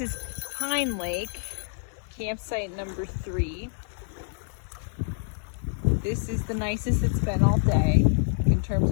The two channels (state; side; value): silent; right; 60 dB below the other